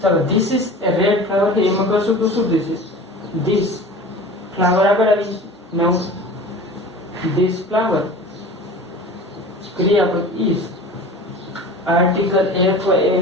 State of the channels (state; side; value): normal; both; correlation 0.38